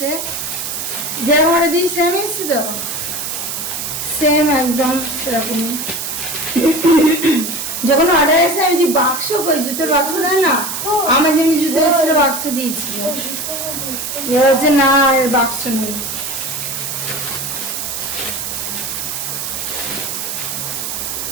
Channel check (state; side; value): noise; right; hiss, 4 dB below the sound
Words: যেরকম অর্ডার দিয়েছি সেম এসছে তো, সেম একদম সেরকমই। যখন অর্ডার এসে আমি যে বাক্স করি, জুতোর বাক্স দেয় না, আমার যেমনি জুতো এসেছিল বাক্স দিয়েছিল। এ হচ্ছে না, এর বাক্স নেই।